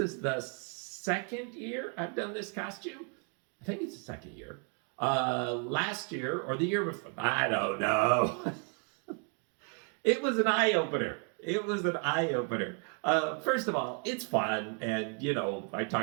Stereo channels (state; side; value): quieter; left; 39.3 dB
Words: the second year I've done this costume. I think it's the second year. Last year or the year before, I don't know. It was an eye-opener. It was an eye-opener. First of all, it's fun, and I